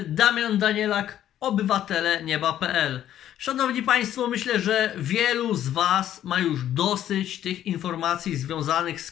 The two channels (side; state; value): right; quieter; 11.4 dB